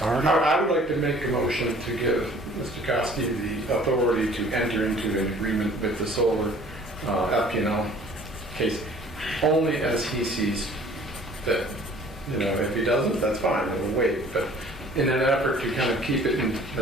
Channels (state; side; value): normal; both; correlation 0.52